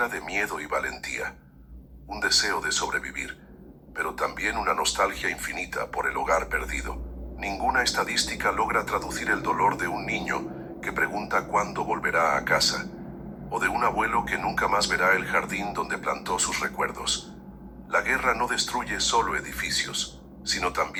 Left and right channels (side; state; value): both; identical; correlation 1.00